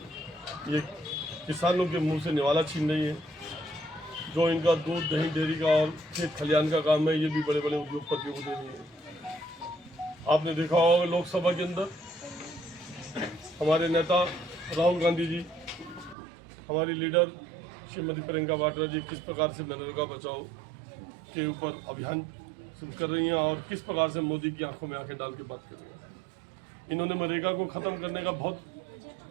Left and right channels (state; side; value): drops out; left; at 16.2 s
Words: ये किसानों के मुंह से निवाला छीन रही है। जो इनका दूध दही डेयरी का और खेत खलियान का काम है, ये भी बड़े बड़े उद्योगपतियों को दे रही है। आपने देखा होगा लोकसभा के अंदर हमारे नेता राहुल गांधी जी, हमारी लीडर श्रीमती प्रियंका वाड्रा जी किस प्रकार से मनरेगा बचाओ के ऊपर अभियान शुरू कर रही हैं और किस प्रकार से मोदी की आंखों में आंखें डाल के बात कर रही हैं। इन्होंने मनरेगा को ख़त्म करने का बहुत